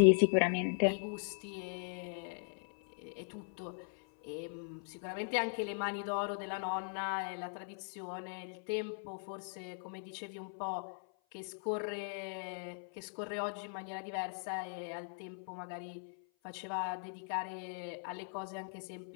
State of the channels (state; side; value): silent; right; 52 dB below the other